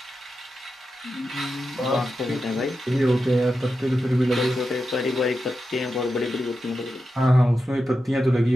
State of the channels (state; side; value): normal; both; correlation 0.89